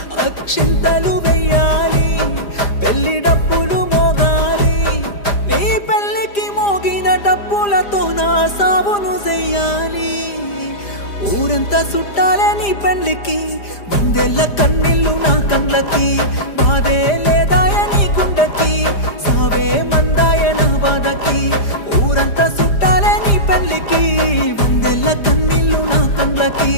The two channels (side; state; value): right; late; 5.0 ms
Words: అక్షింతలు వెయ్యాలి, పెళ్లి డప్పులు మోగాలి, నీ పెళ్లికి మోగిన డప్పులతో నా సావును చెయ్యాలి. ఊరంతా చుట్టాలే నీ పెళ్లికి, వందెల్ల కన్నీళ్ళు నా కళ్ళకి, బాధే లేదాయ నీ గుండెకి, సావే మందాయ నా బాధకి. ఊరంతా చుట్టాలే నీ పెళ్లికి, వందెల్ల కన్నీళ్ళు నా కళ్ళకి,